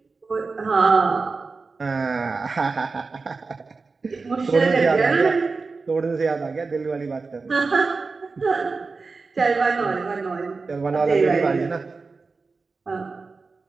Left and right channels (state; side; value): quieter; left; 4.2 dB